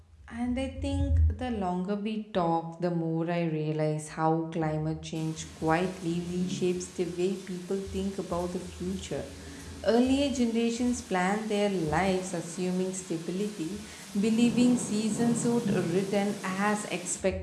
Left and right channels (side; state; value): both; identical; correlation 1.00